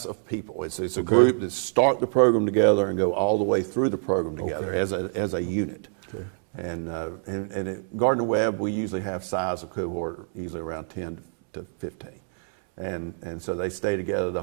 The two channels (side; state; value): left; silent; 61 dB below the other